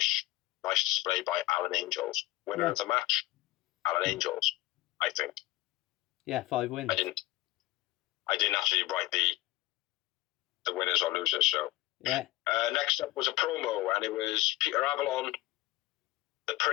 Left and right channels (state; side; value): quieter; right; 17.4 dB